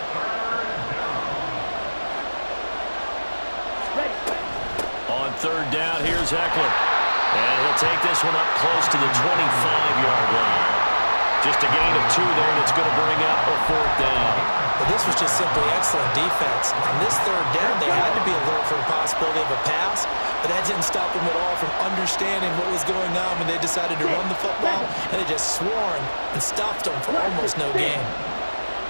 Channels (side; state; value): both; inverted; correlation -1.00